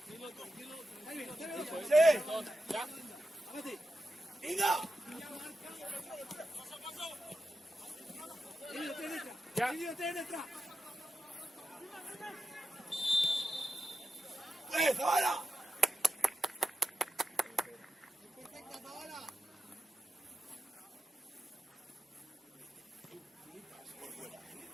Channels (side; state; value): both; normal; correlation 0.89